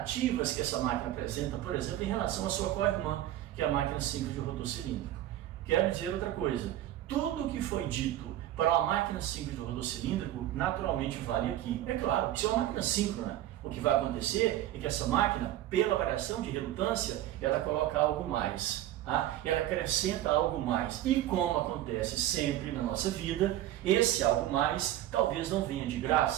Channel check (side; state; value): left; quieter; 13.3 dB